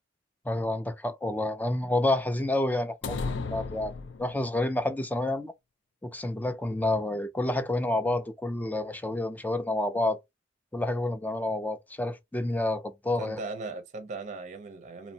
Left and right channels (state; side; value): normal; both; correlation 0.79